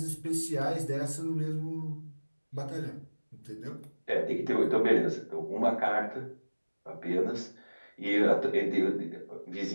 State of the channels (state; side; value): inverted; both; correlation -1.00